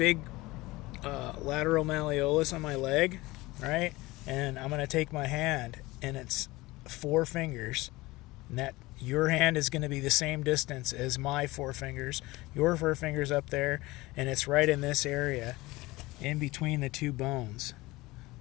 lateral malleolus on my leg, right? And I'm going to take my hand, and it's 4 fingers. And that your hand is going to be the same distance as my 4 fingers. Your 4 fingers up there, and it's right in this area, in between the 2 bones.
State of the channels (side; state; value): right; quieter; 20.7 dB